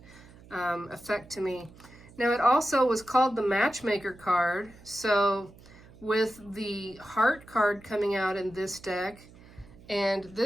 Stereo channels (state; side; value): noise; right; hum, 22 dB below the sound